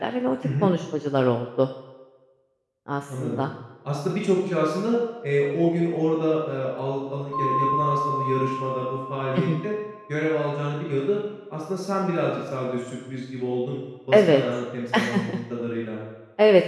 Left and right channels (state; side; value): identical; both; correlation 1.00